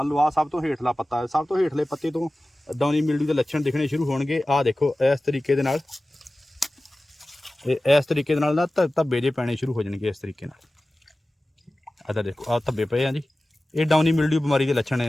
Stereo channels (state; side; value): normal; both; correlation 0.96